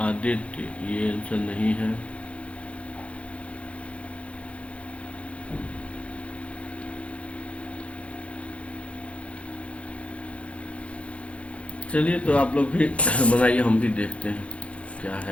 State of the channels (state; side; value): late; right; 0.062 ms